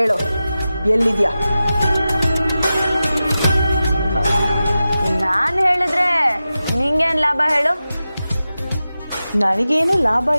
ಎಲ್ಲಿದ್ಯಾ? ನಾನು ಹೇಳಿದ್ರೆ ನಿಂಗೇನ್ ಲಾಭ ಹೇಳು? ನನಗೇನು ಲಾಭ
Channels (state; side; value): inverted; both; correlation -0.93